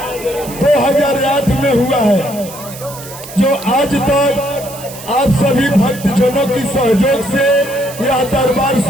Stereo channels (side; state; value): right; noise; hiss, 15 dB below the sound